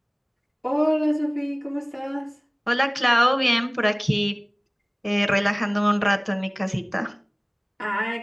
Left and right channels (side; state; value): both; identical; correlation 1.00